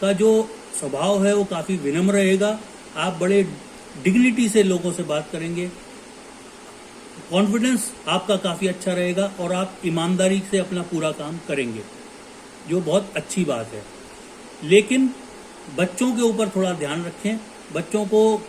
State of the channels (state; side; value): identical; both; correlation 1.00